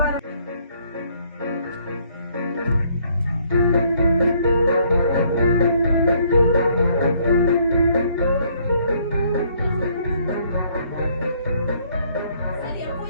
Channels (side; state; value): both; inverted; correlation -0.65